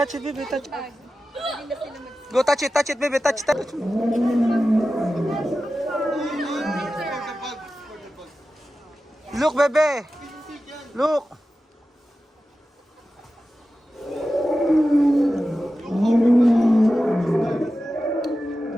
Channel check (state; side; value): normal; both; correlation 0.93